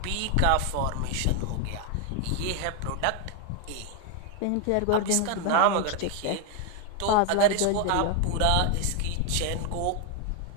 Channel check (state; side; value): different; both; correlation 0.01